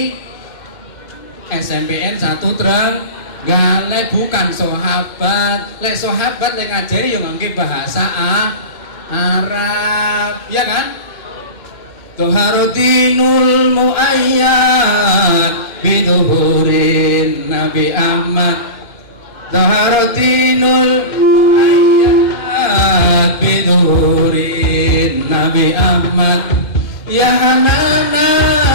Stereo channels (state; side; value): late; right; 2.1 ms